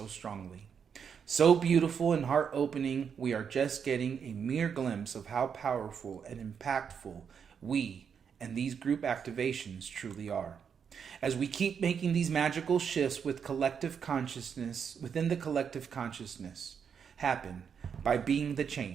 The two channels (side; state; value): left; quieter; 7.0 dB